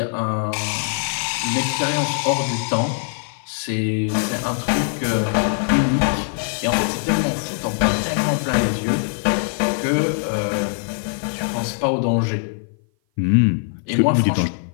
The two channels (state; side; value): silent; right; 56 dB below the other